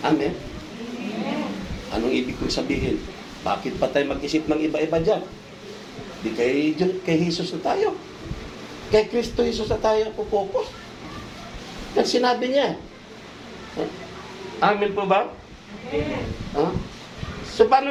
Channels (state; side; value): identical; both; correlation 1.00